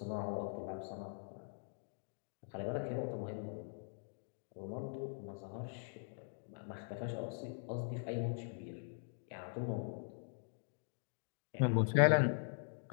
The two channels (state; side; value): silent; right; digital silence